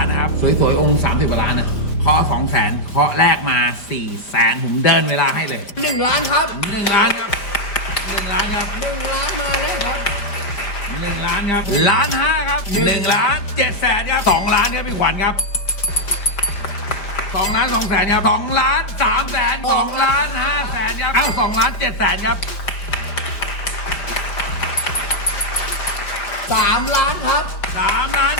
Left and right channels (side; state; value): right; late; 5.0 ms